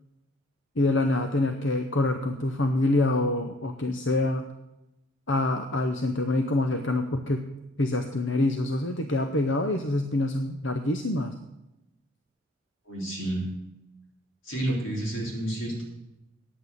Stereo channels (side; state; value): both; normal; correlation 0.59